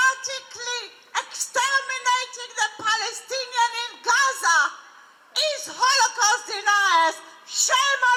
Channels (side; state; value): both; identical; correlation 1.00